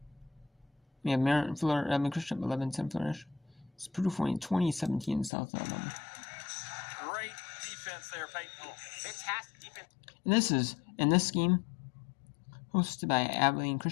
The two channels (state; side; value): drops out; right; at 5.3 s